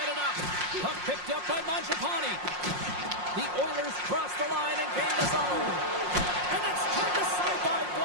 it up. Puck picked up by Mangiapane. The Oilers cross the line and gain the zone. And it's turned aside by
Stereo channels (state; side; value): late; left; 5.6 ms